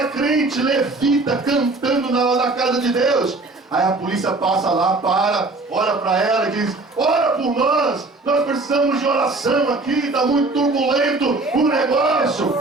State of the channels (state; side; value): quieter; left; 3.3 dB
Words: crente, levita, cantando na casa de Deus. Aí a polícia passa lá, olha para ela e diz: ora por nós precisamos de oração aqui, está muito turbulento o negócio.